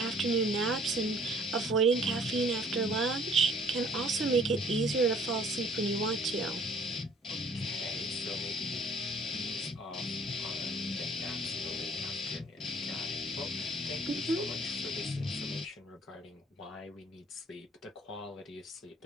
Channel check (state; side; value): normal; both; correlation 0.56